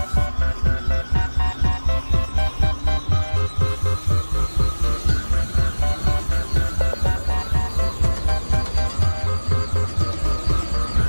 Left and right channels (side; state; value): both; inverted; correlation -1.00